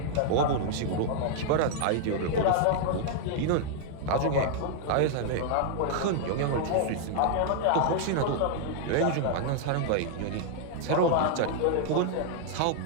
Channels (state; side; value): different; both; correlation -0.01